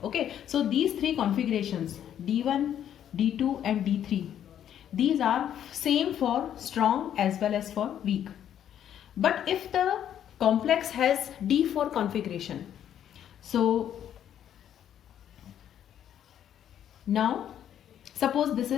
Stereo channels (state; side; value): quieter; right; 10.1 dB